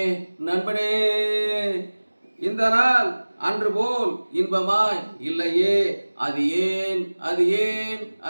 நண்பனே, இந்த நாள் அன்று போல் இன்பமாய் இல்லையே, அது ஏன் அது ஏன்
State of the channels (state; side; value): inverted; both; correlation -1.00